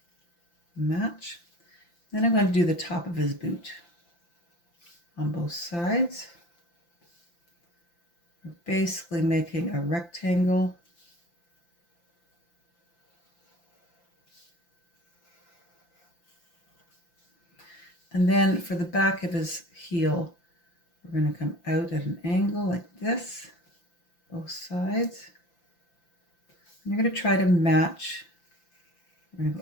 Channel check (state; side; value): late; right; 5.8 ms